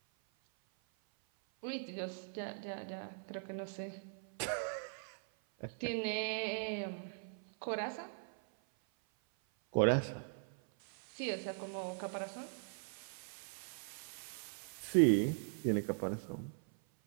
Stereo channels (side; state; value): left; silent; 51 dB below the other